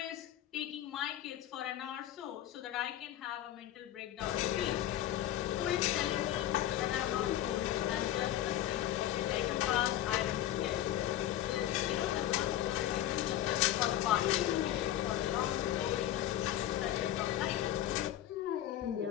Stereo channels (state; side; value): quieter; right; 12.6 dB